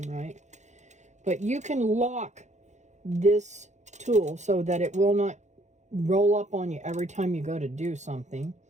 right. But you can lock this tool so that it will not roll up on you every time you go to do something,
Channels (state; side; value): late; left; 0.34 ms